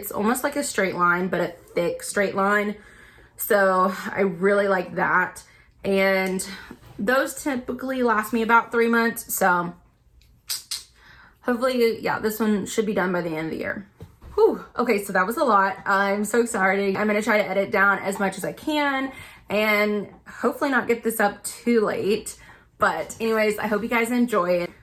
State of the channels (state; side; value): identical; both; correlation 1.00